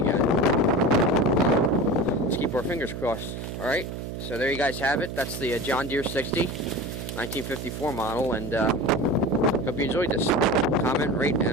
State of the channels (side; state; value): right; noise; hum, 7 dB below the sound